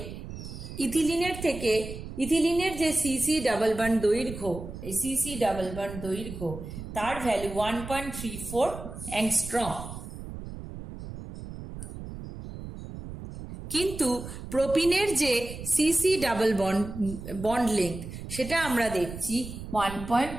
ইথিলিনের যে সিসি ডাবল বন্ড দৈর্ঘ্য, এই সিসি ডাবল বন্ড দৈর্ঘ্য তার ভ্যালু 1.34 অ্যাংস্ট্রম, কিন্তু প্রোপিনের যে সিসি ডাবল বন্ড লেংথ সেটা আমরা দেখছি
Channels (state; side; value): noise; right; rumble, 10 dB below the sound